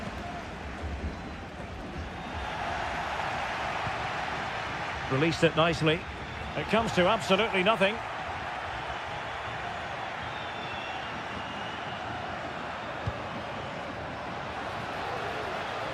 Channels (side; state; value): both; identical; correlation 1.00